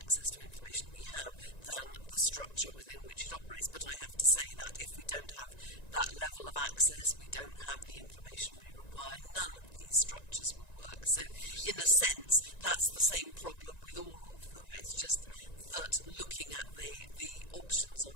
to information we have than the structure within which it operates. But I have to say that if we don't have that level of access, we don't have the information we require, none of these structures will work. So in a sense, that's the same problem with all of them. Yeah, it's just that looking at the options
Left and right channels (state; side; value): late; right; 1.9 ms